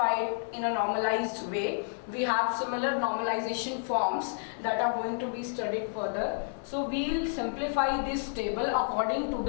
it in a normalized way. We have similar normalization forms that are going to be studied further. So we will simplify this table according to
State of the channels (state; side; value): silent; right; 58 dB below the other